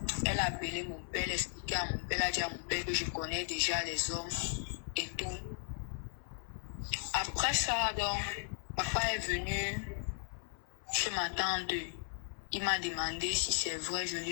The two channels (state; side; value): silent; right; 53 dB below the other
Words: elle a appelé mon père, elle a expliqué à mon père, elle a dit à mon père que je connais déjà les hommes et tout. Après ça, donc, papa est venu chez ma tante. Il m'a demandé si c'est vrai, je lui